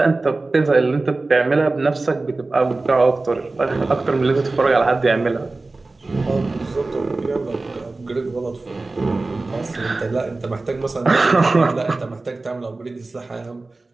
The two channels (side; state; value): left; quieter; 3.3 dB